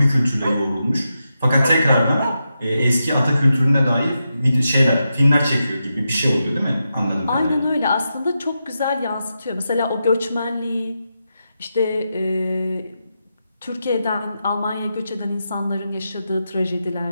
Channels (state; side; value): inverted; both; correlation -0.87